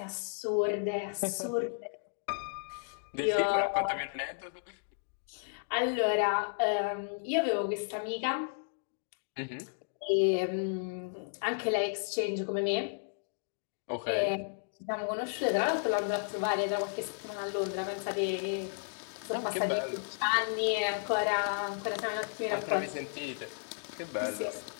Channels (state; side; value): silent; right; digital silence